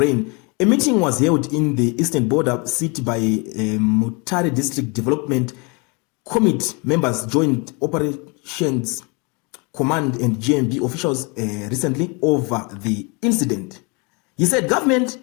A meeting was held in the eastern border city by Mutare District Development Committee members, Joint Operations Command and GMB officials recently over the incident. He said government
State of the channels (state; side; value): quieter; right; 31.2 dB